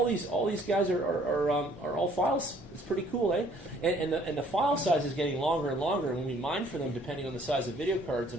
these guys are all files. It's pretty cool, eh? And the file size is getting longer and longer. And when we mine for them, depending on the size of video cards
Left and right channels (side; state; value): both; normal; correlation 0.59